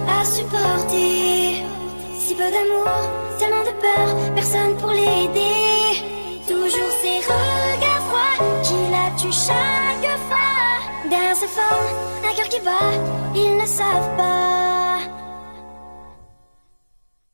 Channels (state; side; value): inverted; both; correlation -1.00